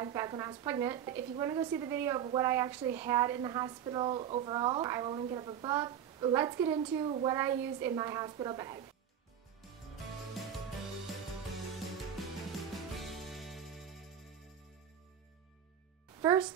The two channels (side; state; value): left; quieter; 9.3 dB